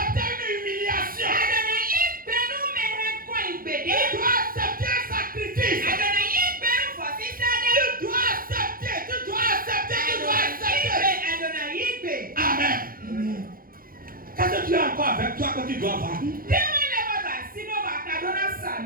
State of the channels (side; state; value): left; late; 0.42 ms